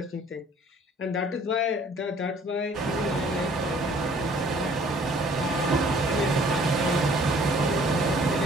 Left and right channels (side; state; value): both; normal; correlation 0.56